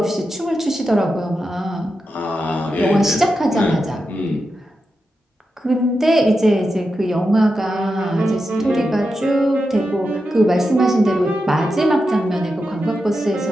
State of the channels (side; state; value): both; normal; correlation 0.89